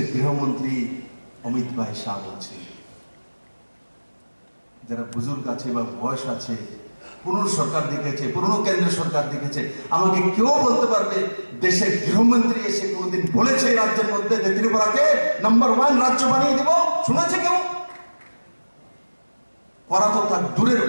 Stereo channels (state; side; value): inverted; both; correlation -1.00